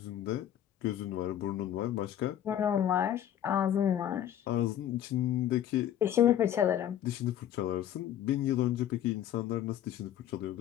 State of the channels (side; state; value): right; quieter; 10.9 dB